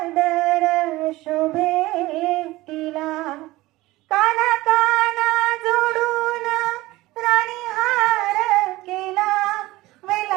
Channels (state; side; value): quieter; left; 18.8 dB